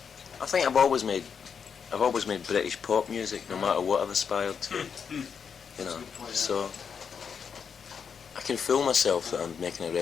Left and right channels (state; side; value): quieter; right; 6.7 dB